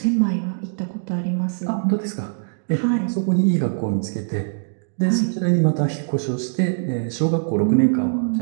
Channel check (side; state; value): left; silent; digital silence